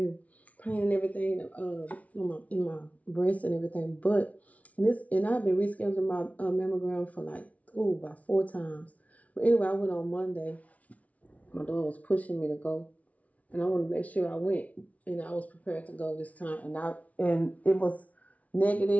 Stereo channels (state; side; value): late; right; 0.068 ms